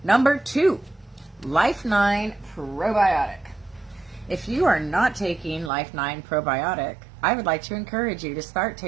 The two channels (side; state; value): left; drops out; at 5.7 s